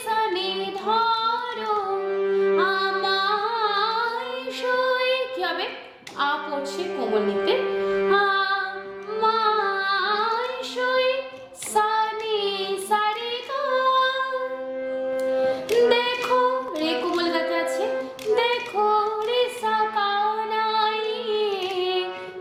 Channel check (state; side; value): identical; both; correlation 1.00